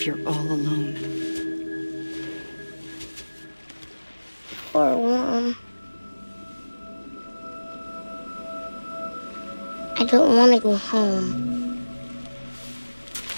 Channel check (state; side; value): inverted; both; correlation -1.00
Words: you're all alone. Or warm. I don't want to go home.